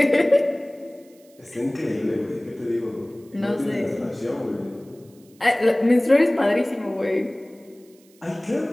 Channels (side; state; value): right; noise; hiss, 30 dB below the sound